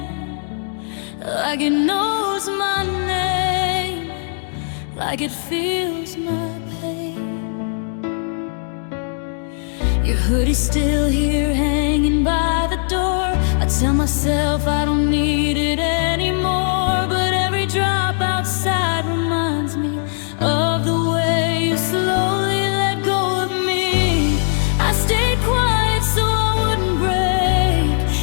like it knows my name, like it feels my pain. Your hoodie's still here hanging by the door. I tell myself I don't need it anymore, but every drop outside reminds me of the way you slowly let go of me. I stayed quiet so I wouldn't break,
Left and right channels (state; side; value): silent; right; digital silence